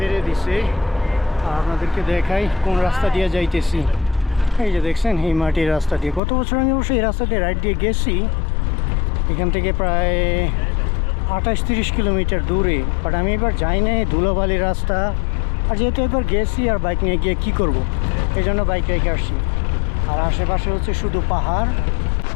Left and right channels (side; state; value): right; drops out; at 6.2 s